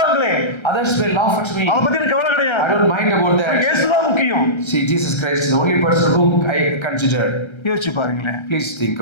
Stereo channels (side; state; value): right; late; 1.3 ms